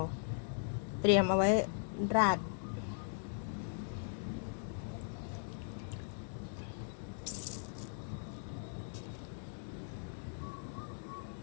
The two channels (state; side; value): silent; right; digital silence